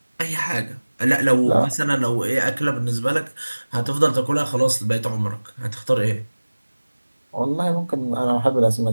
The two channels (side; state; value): both; inverted; correlation -1.00